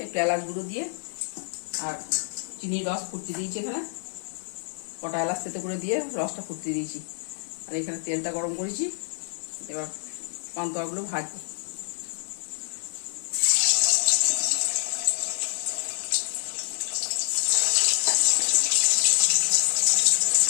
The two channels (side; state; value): right; silent; 55 dB below the other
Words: একটু এলাচ গুঁড়ো দিয়ে, আর চিনির রস ফুটতে দিয়েছি। এখানে কটা এলাচ তেতে করে দিয়ে রসটা ফুটতে দিয়েছি, আর এখানে তেলটা গরম করেছি। এবার পান্তুয়াগুলো ভাজবো।